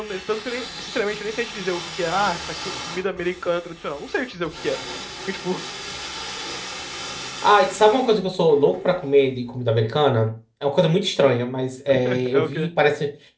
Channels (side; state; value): both; identical; correlation 1.00